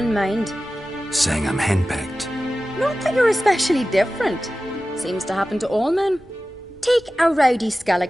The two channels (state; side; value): normal; both; correlation 0.95